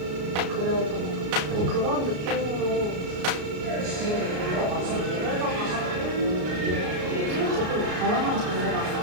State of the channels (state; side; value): late; left; 33 ms